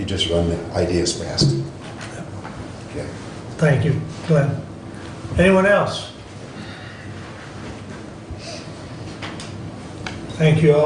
just run the ideas past. Okay. Thank you, Glenn. Anyone else? Thank you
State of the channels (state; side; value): identical; both; correlation 1.00